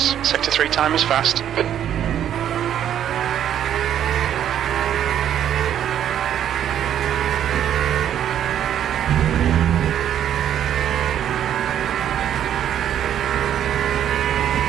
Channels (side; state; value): left; quieter; 10.2 dB